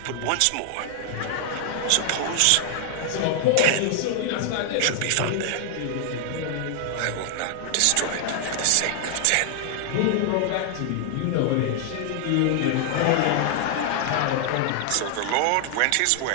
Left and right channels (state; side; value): different; both; correlation 0.00